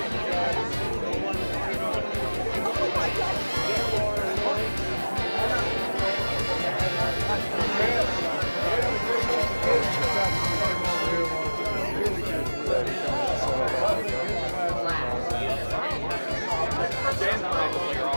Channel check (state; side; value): inverted; both; correlation -1.00